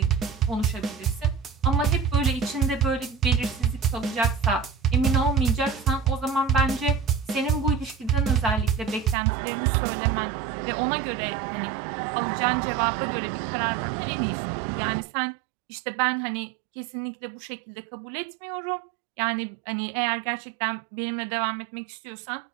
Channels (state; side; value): drops out; left; at 9.2 s